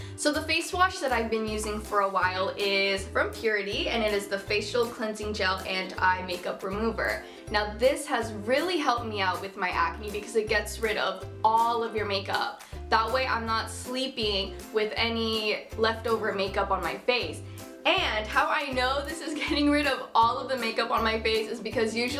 So the face wash that I've been using for a while is from Purity, and it is the Facial Cleansing Gel and Eye Makeup Remover. Now this has really helped me out with my acne because it gets rid of all of your makeup. That way I'm not sleeping with any leftover makeup on my face. And how I know this is getting rid of all of the makeup on my face is because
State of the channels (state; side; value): identical; both; correlation 1.00